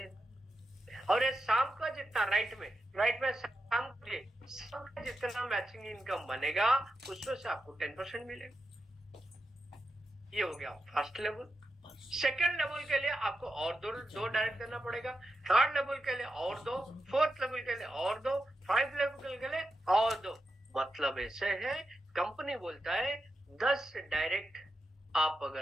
और ये शाम का जितना राइट में शाम का जितना मैचिंग इनकम बनेगा उसमें से आपको 10% मिलेगा। ये हो गया फर्स्ट लेवल। सेकंड लेवल के लिए आपको और दो डायरेक्ट देना पड़ेगा, थर्ड लेवल के लिए और 2, फोर्थ लेवल के लिए और 2, 5 लेवल के लिए और 2। मतलब ऐसे है, कंपनी बोलता है 10 डायरेक्ट आप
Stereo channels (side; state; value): both; normal; correlation 0.88